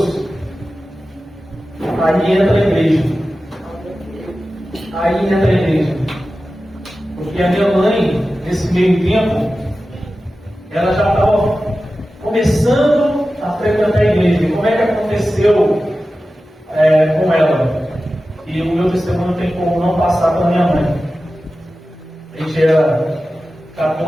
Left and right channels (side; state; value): both; normal; correlation 0.94